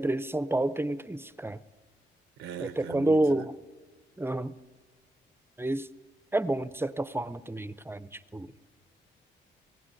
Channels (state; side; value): normal; both; correlation 0.90